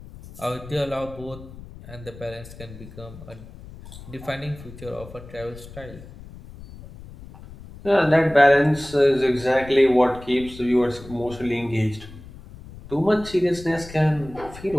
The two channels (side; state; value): left; noise; rumble, 17 dB below the sound